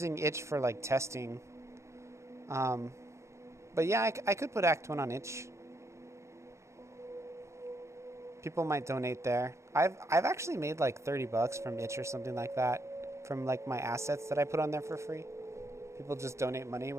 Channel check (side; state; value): left; late; 0.14 ms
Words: itch for like testing. But yeah, I could put Act 1 on itch. People might donate there. I've actually made like $30 from itch or something like that, from like my assets that I put on there for free. People just donate money